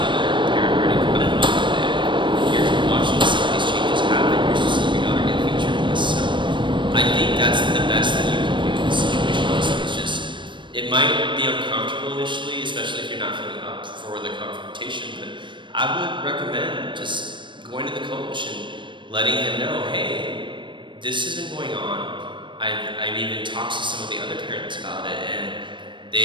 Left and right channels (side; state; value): left; late; 0.23 ms